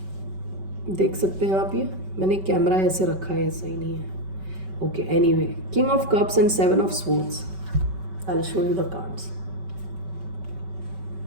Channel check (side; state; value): left; late; 5.2 ms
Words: देख सकते हैं आप, ये मैंने कैमरा ऐसे रखा है, सही नहीं है. Okay, anyway, king of cups and seven of swords. I will show you the cards.